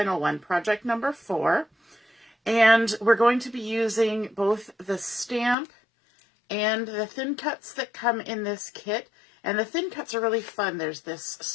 one, project number 4. And we're going to be using both the stamp and the thin cuts that come in this kit. And the thin cuts are really fun. There's this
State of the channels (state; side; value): drops out; right; at 5.6 s